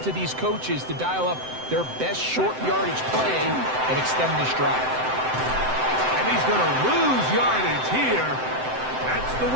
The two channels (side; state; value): left; late; 7.8 ms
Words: to these coaches to dial up their best short yardage play and extend this drive. And he's going to lose yardage here. That's the